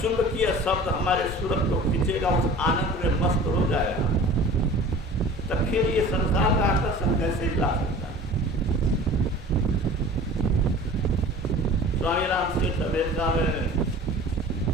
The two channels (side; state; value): both; normal; correlation 0.42